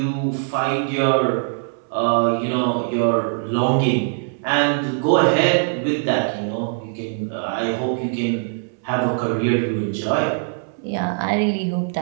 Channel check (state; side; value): silent; left; 65 dB below the other